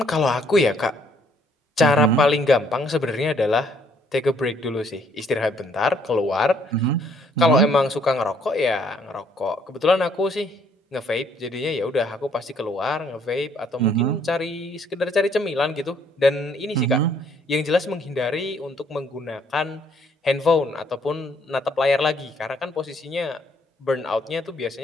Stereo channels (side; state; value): both; normal; correlation 0.66